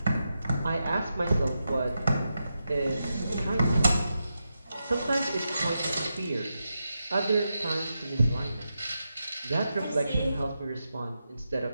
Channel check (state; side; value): inverted; both; correlation -0.88